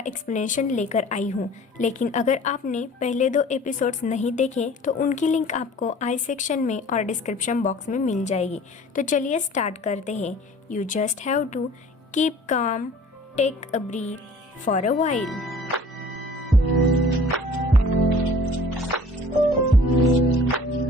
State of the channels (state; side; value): normal; both; correlation 0.48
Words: एक्सप्लेनेशन लेकर आई हूँ। लेकिन अगर आपने पहले 2 एपिसोड्स नहीं देखे तो उनकी लिंक आपको आई सेक्शन में और डिस्क्रिप्शन बॉक्स में मिल जाएगी। तो चलिए स्टार्ट करते हैं। You just have to keep calm, take a breath for a while.